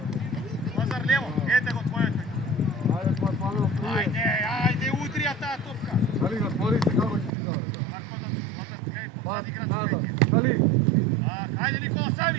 Lazar levo, idete go tvoje. Ajde, udrija ta topka! Šali ga, tvori se kako će ti dao. Marko, Lazar, gledaj, pozadi igrač od Nazad, kje. šali! Ajde Nikola,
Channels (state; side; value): drops out; left; at 7.3 s